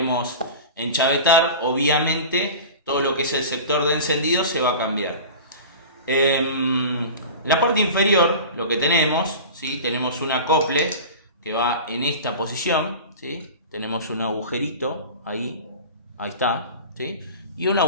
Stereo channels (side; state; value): both; inverted; correlation -0.34